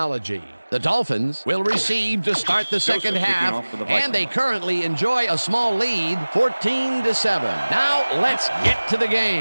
The Dolphins will receive to start the second half, and they currently enjoy a small lead, 14-7. Now let's get to the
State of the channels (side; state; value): both; inverted; correlation -1.00